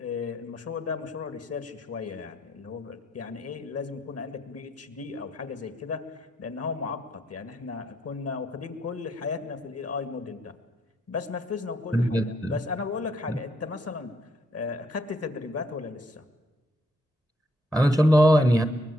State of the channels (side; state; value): both; normal; correlation 0.72